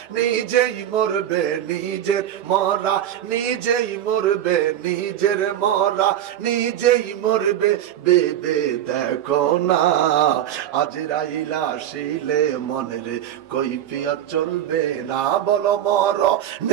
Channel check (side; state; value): left; quieter; 11.2 dB